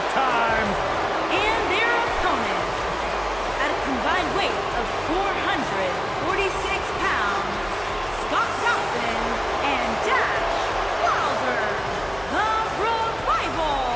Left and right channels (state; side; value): noise; right; hum, 18 dB below the sound